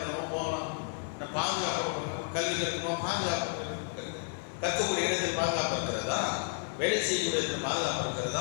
போகலாம், பாதுகாப்பு கல்வி கற்கணுமோ பாதுகாப்பு கற்கக்கூடிய இடத்தில் பாதுகாப்பு இருக்கிறதா, வேலை செய்யக்கூடிய இடத்துல பாதுகாப்பு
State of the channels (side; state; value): right; silent; digital silence